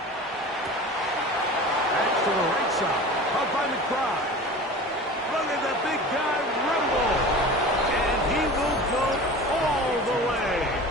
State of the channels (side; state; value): both; normal; correlation 0.36